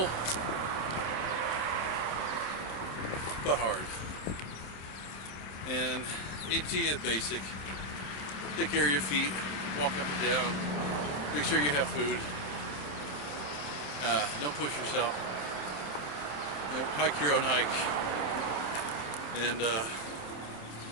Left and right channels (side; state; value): right; late; 27 ms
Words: but hard. And AT is basic. Take care of your feet, walk up and down, make sure you have food. Don't push yourself. You know, hike your own hike. And